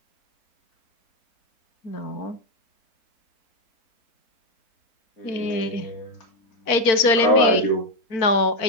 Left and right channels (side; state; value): right; late; 4.4 ms